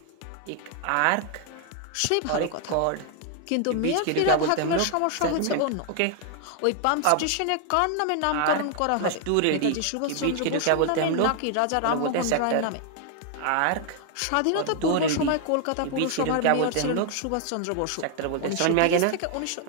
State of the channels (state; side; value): different; both; correlation 0.00